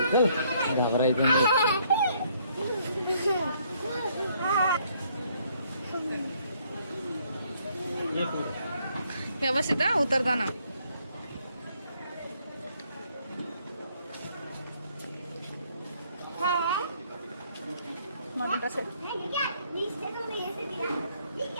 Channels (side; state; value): both; inverted; correlation -0.68